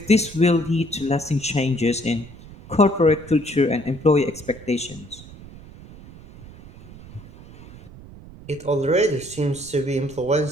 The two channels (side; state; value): right; noise; rumble, 18 dB below the sound